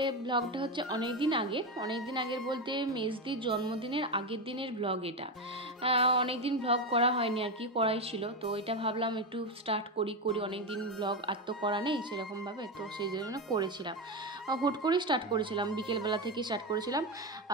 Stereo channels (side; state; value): both; normal; correlation 0.13